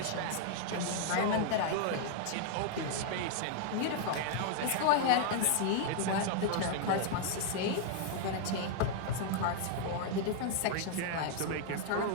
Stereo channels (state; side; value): different; both; correlation -0.01